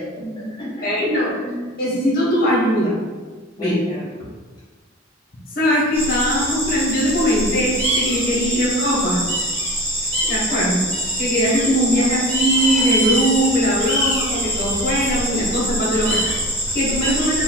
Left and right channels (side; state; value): both; normal; correlation 0.35